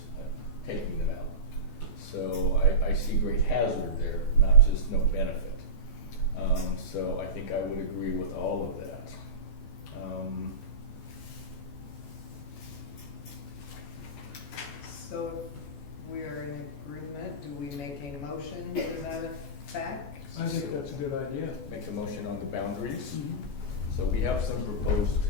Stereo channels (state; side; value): late; right; 14 ms